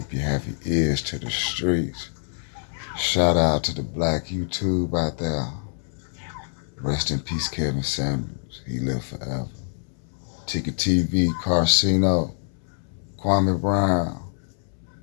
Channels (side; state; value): right; silent; 62 dB below the other